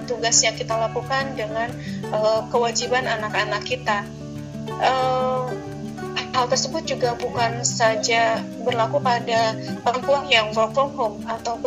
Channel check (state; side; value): identical; both; correlation 1.00